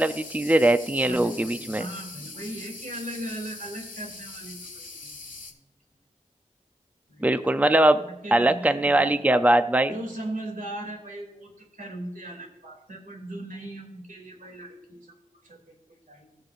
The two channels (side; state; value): both; normal; correlation 0.83